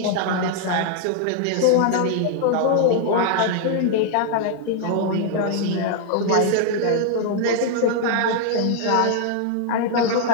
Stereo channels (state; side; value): different; both; correlation 0.00